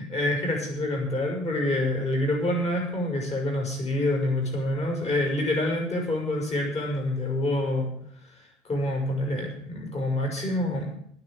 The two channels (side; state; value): both; normal; correlation 0.60